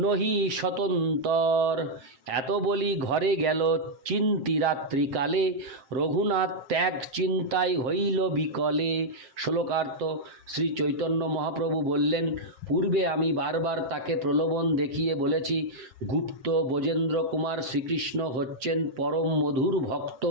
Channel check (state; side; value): late; left; 7.6 ms